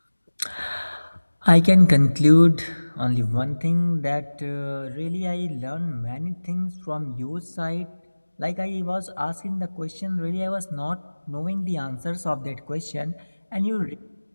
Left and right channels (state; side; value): inverted; both; correlation -1.00